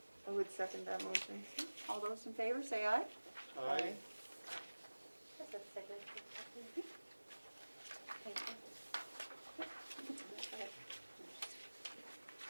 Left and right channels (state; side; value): inverted; both; correlation -1.00